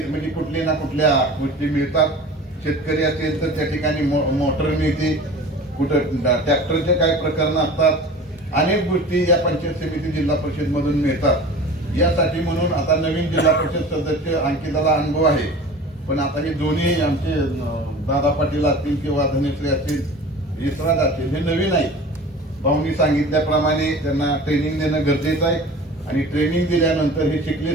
म्हणजे कुठल्या ना कुठल्या गोष्टी मिळतात. शेतकरी असेल तर त्या ठिकाणी मोटर मिळते, कुठं ट्रॅक्टरचे काही प्रकरण असतात, अनेक गोष्टी या पंचायत समिती जिल्हा परिषद मधून मिळतात. यासाठी म्हणून आता नवीन जिल्हा परिषद सदस्य अंकिताला अनुभव आहे, पण आता हे दोन्ही आमचे दादा पाटील असतील किंवा धनेश्री असतील, यशराज असतील, हे नवीन आहे. भाऊनी सांगितल्याप्रमाणे त्यांना ट्रेनिंग देणं गरजेचं आहे आणि ट्रेनिंग दिल्यानंतर हे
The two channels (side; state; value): both; normal; correlation 0.39